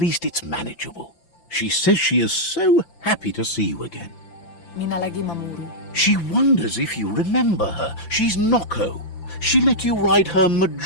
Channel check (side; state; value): right; late; 5.9 ms